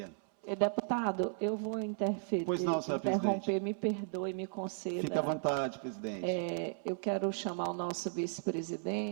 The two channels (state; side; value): silent; left; 54 dB below the other